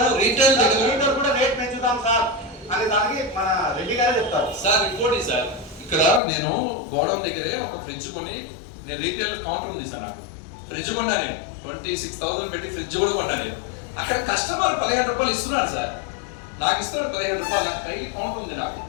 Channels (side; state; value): right; drops out; at 6.2 s